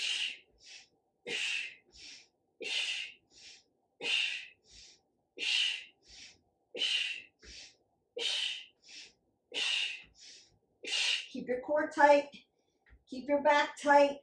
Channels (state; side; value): identical; both; correlation 1.00